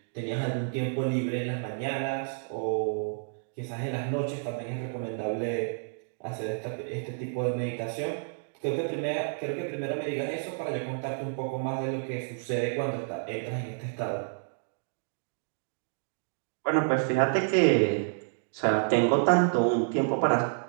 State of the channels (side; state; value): left; silent; digital silence